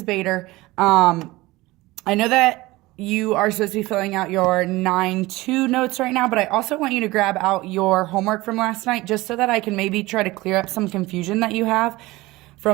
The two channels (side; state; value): left; quieter; 19.9 dB